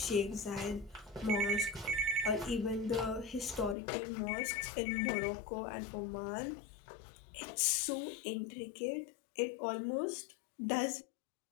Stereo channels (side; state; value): right; drops out; at 3.8 s